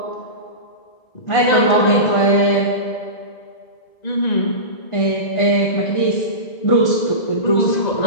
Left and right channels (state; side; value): late; right; 1.9 ms